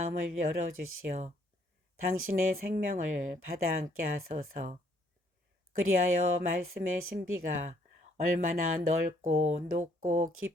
열어주시어 당신의 생명을 받아 안게 하소서. 그리하여 말씀의 신비가 얼마나 넓고 높고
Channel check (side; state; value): both; normal; correlation 0.67